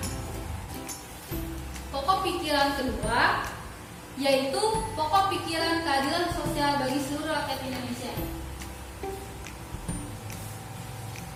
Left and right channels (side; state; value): both; identical; correlation 1.00